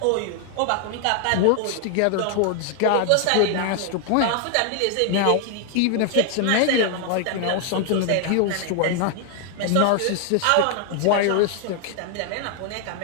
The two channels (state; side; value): different; both; correlation 0.00